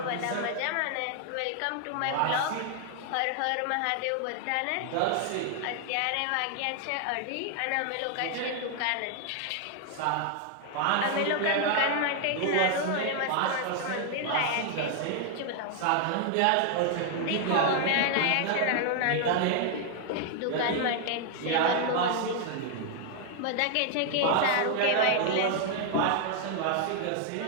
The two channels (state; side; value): different; both; correlation 0.00